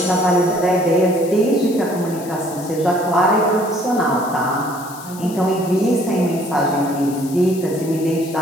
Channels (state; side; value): noise; left; hiss, 17 dB below the sound